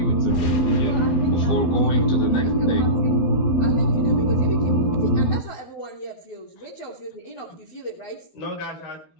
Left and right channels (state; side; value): late; right; 12 ms